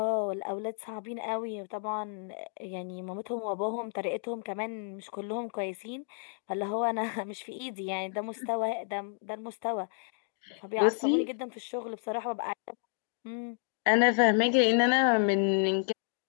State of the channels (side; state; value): right; silent; digital silence